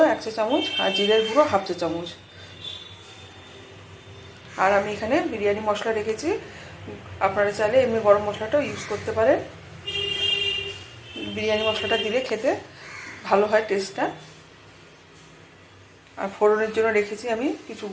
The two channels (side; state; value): both; identical; correlation 1.00